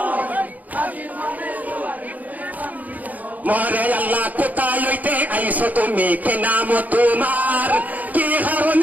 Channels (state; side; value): late; left; 0.079 ms